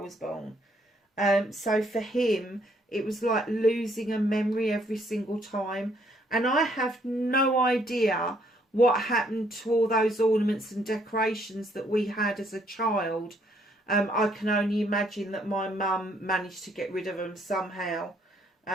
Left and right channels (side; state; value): both; normal; correlation 0.68